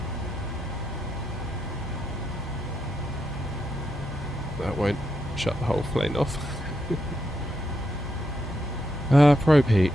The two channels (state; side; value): normal; both; correlation 0.82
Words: that won't shut the whole plane off. Probe heat,